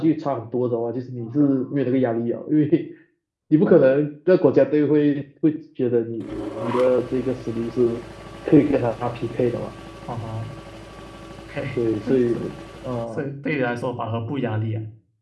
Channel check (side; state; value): both; identical; correlation 1.00